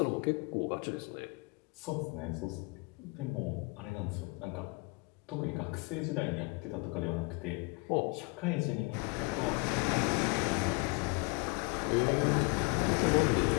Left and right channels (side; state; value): right; quieter; 29.1 dB